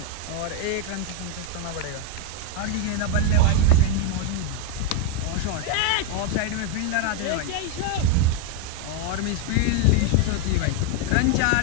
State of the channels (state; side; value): different; both; correlation 0.01